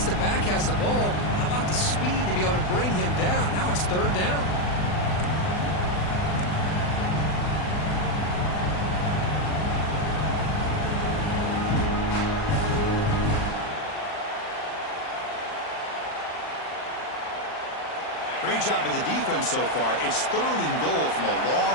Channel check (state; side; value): late; right; 39 ms